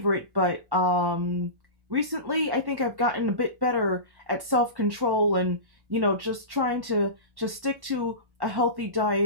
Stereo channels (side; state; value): left; late; 1.1 ms